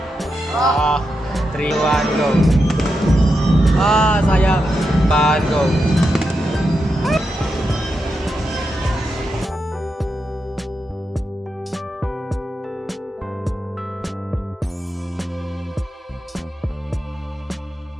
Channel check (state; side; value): normal; both; correlation 0.86